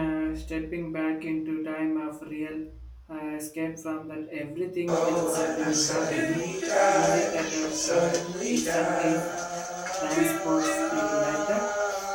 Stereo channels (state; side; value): identical; both; correlation 1.00